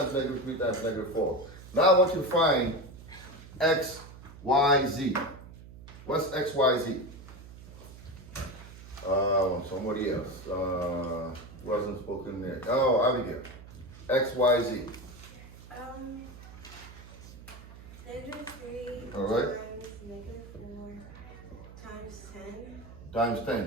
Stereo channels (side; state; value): right; noise; hum, 17 dB below the sound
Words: negative 3 times negative 4. Now I want you to find x, y, z. What's x, y, z? Somebody else. Wasn't spoken there. Oh, Abigail. X, y, z. Negative 3 All right. times negative 4 times 10. Times